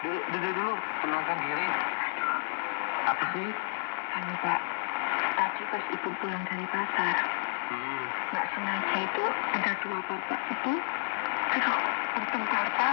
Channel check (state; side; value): silent; right; digital silence